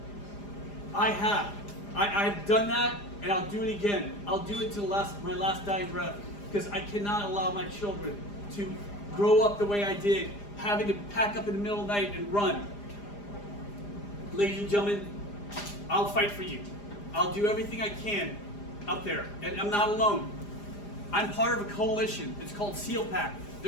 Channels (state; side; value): late; right; 4.9 ms